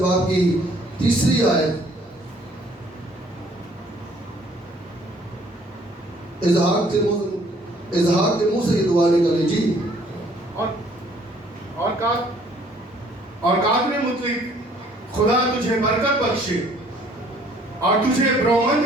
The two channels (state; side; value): normal; both; correlation 0.60